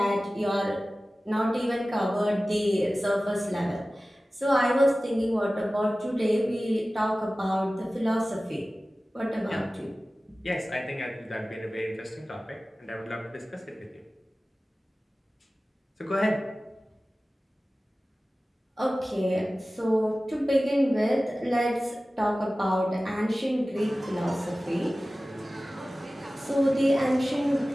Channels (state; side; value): normal; both; correlation 0.96